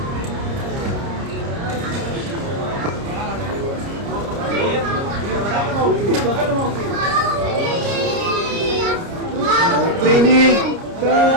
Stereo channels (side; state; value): left; late; 30 ms